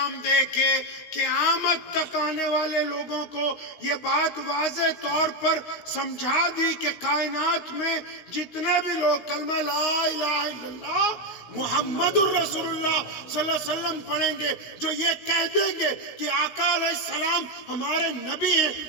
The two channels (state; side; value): late; right; 16 ms